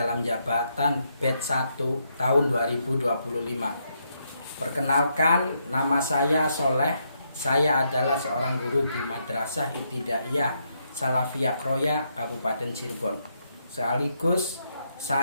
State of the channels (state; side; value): inverted; both; correlation -0.78